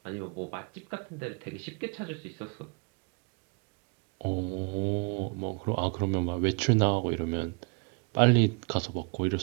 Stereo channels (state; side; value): quieter; left; 32.1 dB